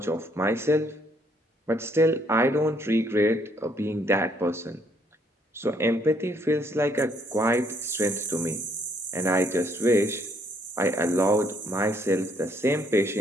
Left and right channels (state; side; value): normal; both; correlation 0.68